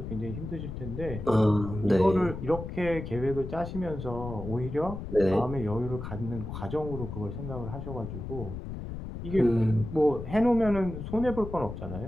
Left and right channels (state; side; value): noise; left; rumble, 8 dB below the sound